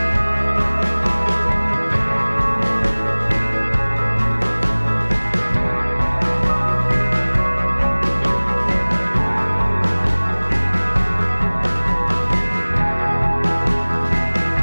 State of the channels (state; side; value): inverted; both; correlation -1.00